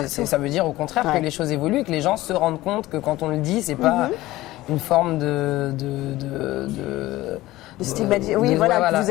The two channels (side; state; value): right; quieter; 17.3 dB